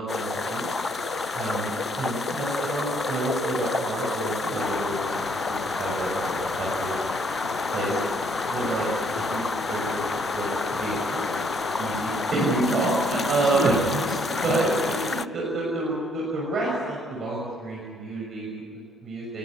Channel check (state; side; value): normal; both; correlation 0.67